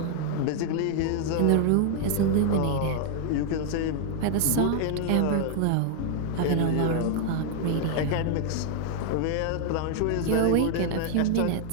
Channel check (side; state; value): both; different; correlation 0.00